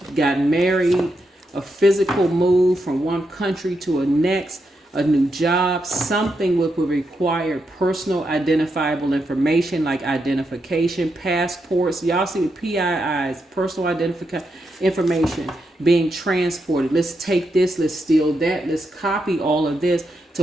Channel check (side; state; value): both; normal; correlation 0.83